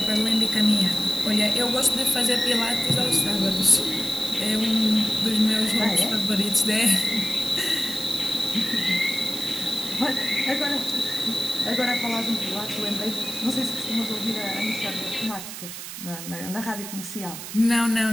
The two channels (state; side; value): noise; right; hiss, 9 dB below the sound